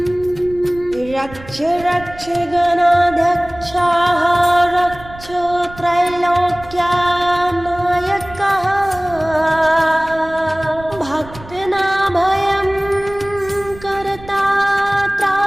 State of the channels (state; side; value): noise; right; rumble, 18 dB below the sound